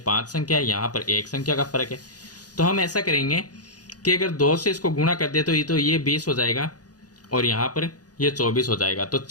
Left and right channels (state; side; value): late; right; 0.68 ms